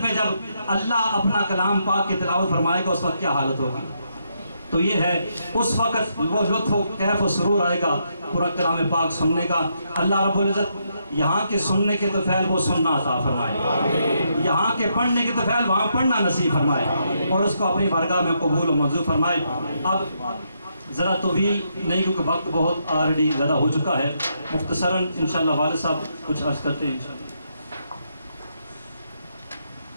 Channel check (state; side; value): inverted; both; correlation -0.78